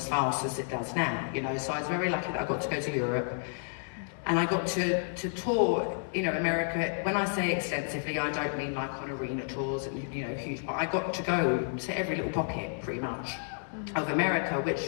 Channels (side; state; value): right; silent; 57 dB below the other